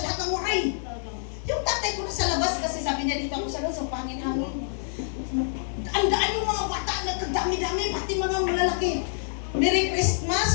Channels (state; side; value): silent; right; digital silence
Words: lahat ng Waray. Yung tatay ko nasa labas kasi sabi niya dito ako sa labas, sa pangin-hangin. Ang daan yung mga bata, nagdami-dami, pati mga malalaki. Merry